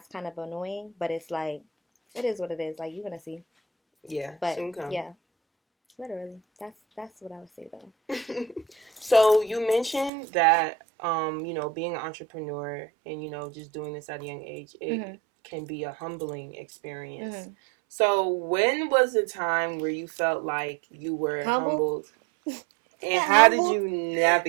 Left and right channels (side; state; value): left; drops out; at 10.1 s